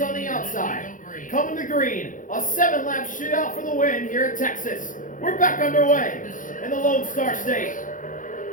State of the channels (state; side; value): late; right; 0.38 ms